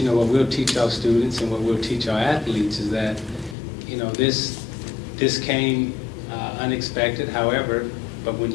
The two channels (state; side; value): drops out; right; at 3.6 s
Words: what we'll teach our students and what we'll teach our athletes is that this came unexpected. However, but when